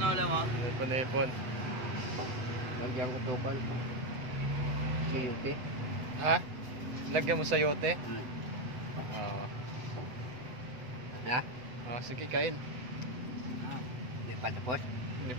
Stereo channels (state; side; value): late; left; 8.0 ms